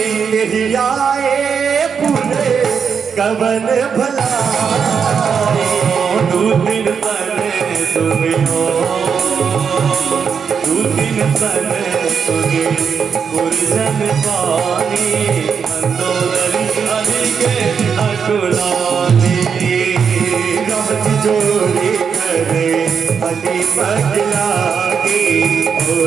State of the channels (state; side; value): quieter; left; 6.6 dB